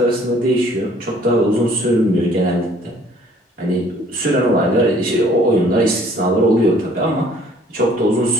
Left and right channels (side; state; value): both; normal; correlation 0.57